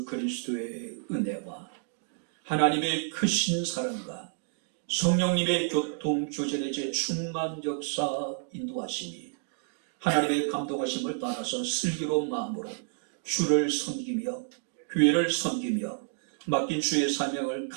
그리스도의 은혜와 하나님의 크신 사랑과 성령님의 교통 교제의 충만 역사 인도하심이 하나님의 감동하심을 따라서 슬기로운 마음으로 주를 섬기며 교회를 섬기며 맡긴 주의 사명을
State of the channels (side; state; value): left; silent; digital silence